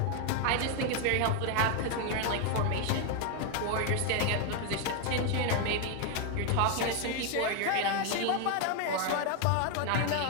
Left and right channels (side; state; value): both; different; correlation 0.01